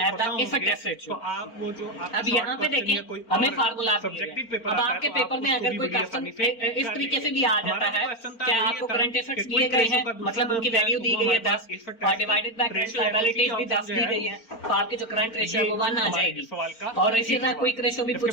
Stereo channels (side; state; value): right; late; 4.4 ms